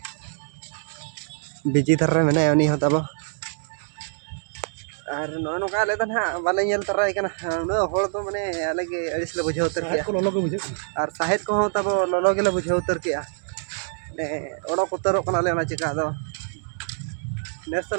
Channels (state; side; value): silent; left; 62 dB below the other